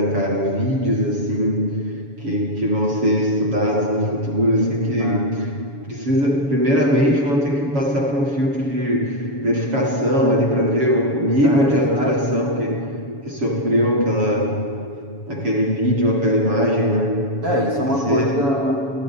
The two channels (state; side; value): late; left; 7.2 ms